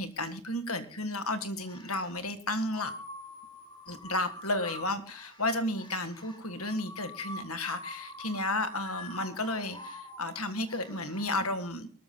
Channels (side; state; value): both; normal; correlation 0.12